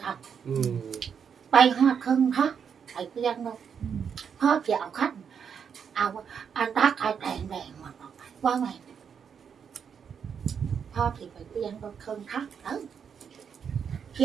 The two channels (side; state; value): left; quieter; 7.1 dB